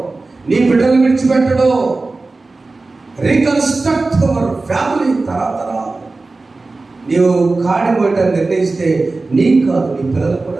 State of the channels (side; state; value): left; quieter; 3.5 dB